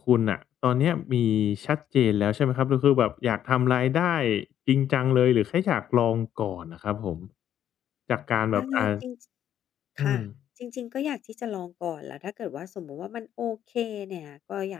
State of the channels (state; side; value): quieter; right; 10.5 dB